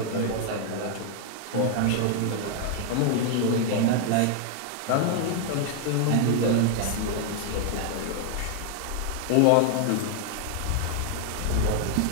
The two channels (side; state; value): both; different; correlation 0.00